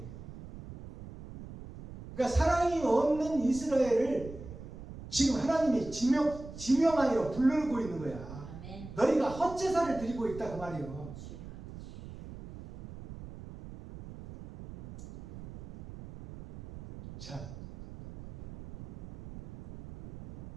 그러니까 사랑이 없는 이스라엘을 지금 하나님이 지명하여 부르고 있는 거야. 아멘. 너희가 헛제사를 드리고 있다 그 말이요. 자,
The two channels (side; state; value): right; noise; rumble, 13 dB below the sound